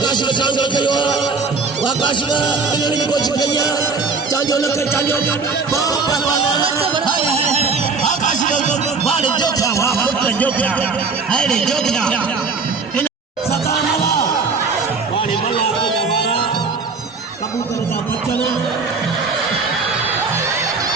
काशिफ चांजो कयो वह काशिफ कल्याण की कोशिश कई चांजो न कर चांजो काशिफ वाले जोखा वाह पुत्र जोखा अरे जोखा सताना वाले मल्ला दवारा कबूतर का बच्चन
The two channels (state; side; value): quieter; left; 4.5 dB